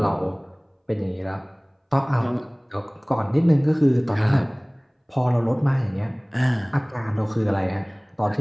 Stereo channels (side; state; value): both; identical; correlation 1.00